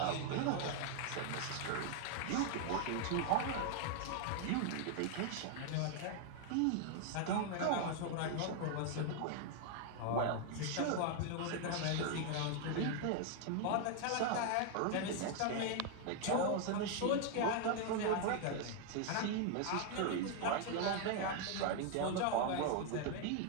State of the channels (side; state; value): both; different; correlation 0.00